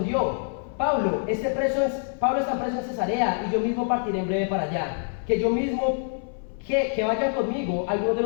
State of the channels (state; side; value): silent; right; 59 dB below the other